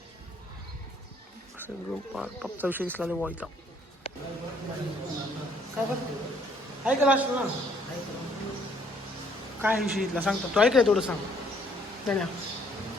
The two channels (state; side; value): normal; both; correlation 0.64